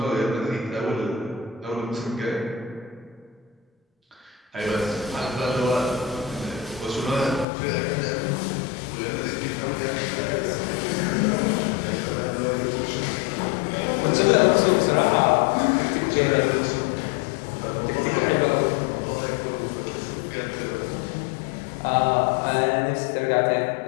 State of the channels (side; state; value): right; drops out; at 7.5 s